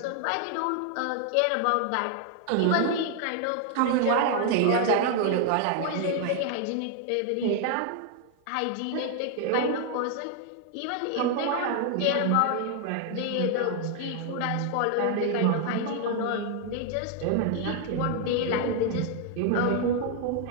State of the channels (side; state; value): both; different; correlation 0.00